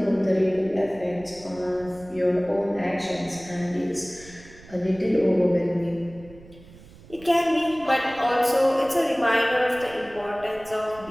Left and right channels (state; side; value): noise; right; rumble, 21 dB below the sound